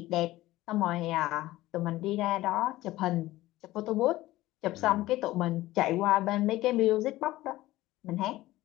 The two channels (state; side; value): quieter; right; 16.9 dB